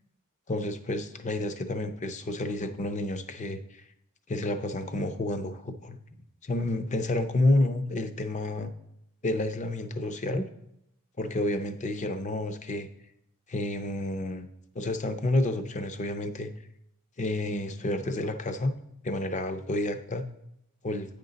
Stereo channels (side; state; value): both; normal; correlation 0.65